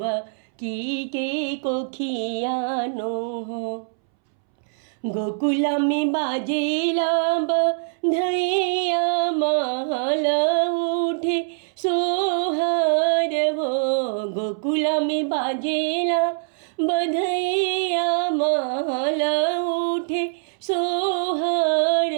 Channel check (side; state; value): left; silent; 63 dB below the other